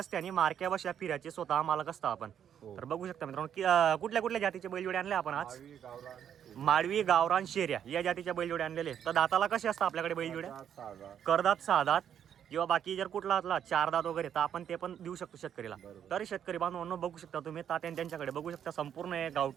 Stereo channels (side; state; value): left; quieter; 9.1 dB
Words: आणि मार्क्या बशा फिरायचे स्वतः मालक असता आपण. तर बघू शकता मित्रांनो की कुठल्या कुठल्या जातीचे बैलजोडे आणले आपण आज? माळवी, गावरान, शेऱ्या या जातीच्या बैलजोडे आणलेले. तर दाताला कसे असतात आपल्याकडे बैलजोड्या? करदात, 6 दात किंवा बाकी जर कुठला असला 4 दात वगैरे तर आपण ते पण देऊ शकतो शेतकरीला. तर शेतकरी बांधवांनो, बघू शकता तुम्ही तात्या त्यांच्याकडे बघू शकता संपूर्ण